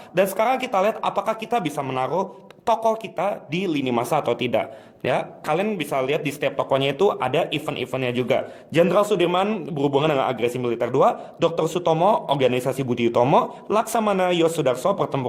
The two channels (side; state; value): both; identical; correlation 1.00